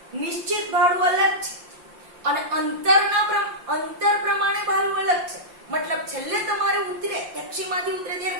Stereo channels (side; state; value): left; late; 5.7 ms